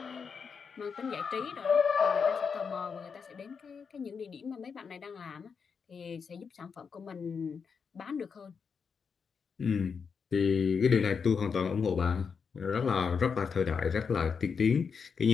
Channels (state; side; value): quieter; right; 5.9 dB